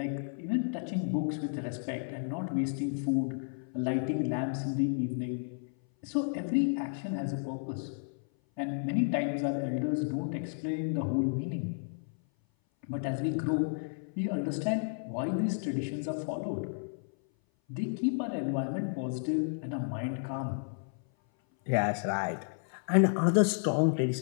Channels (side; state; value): right; silent; 56 dB below the other